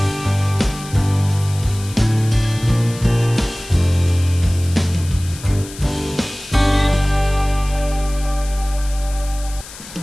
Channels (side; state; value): left; noise; hiss, 16 dB below the sound